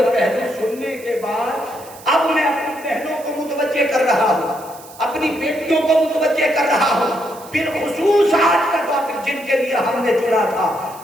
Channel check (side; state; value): right; noise; hiss, 20 dB below the sound